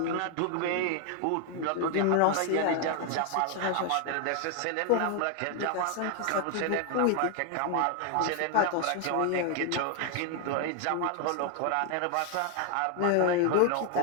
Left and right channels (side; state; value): both; different; correlation 0.00